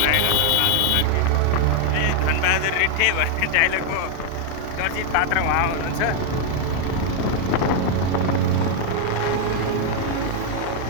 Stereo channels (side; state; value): both; different; correlation 0.01